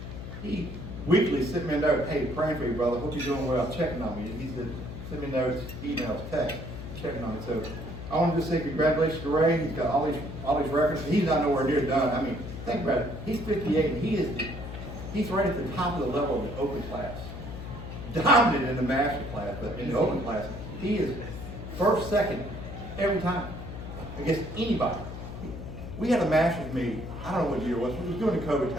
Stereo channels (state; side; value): noise; left; hum, 9 dB below the sound